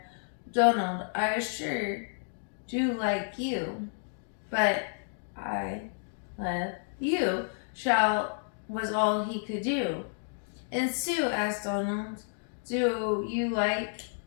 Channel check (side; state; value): right; silent; digital silence